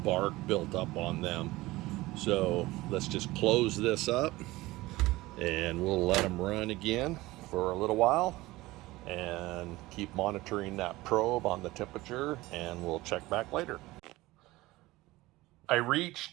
bark built up on them. So let's just close this up, and we'll let them run again for a little while and keep monitoring that probe on the temperature, and we'll check back later. I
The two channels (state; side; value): quieter; left; 19.2 dB